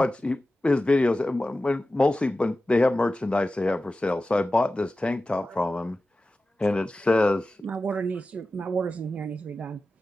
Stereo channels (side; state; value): both; normal; correlation 0.94